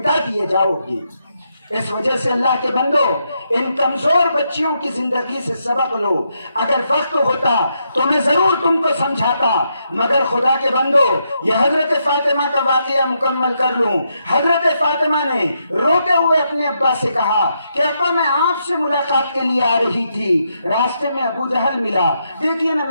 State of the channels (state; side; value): inverted; both; correlation -0.80